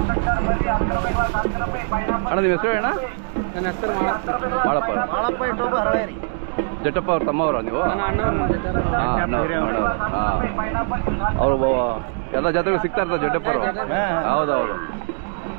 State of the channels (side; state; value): left; silent; 64 dB below the other